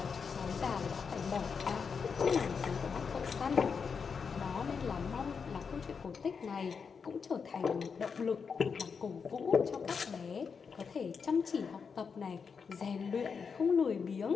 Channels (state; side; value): quieter; right; 5.8 dB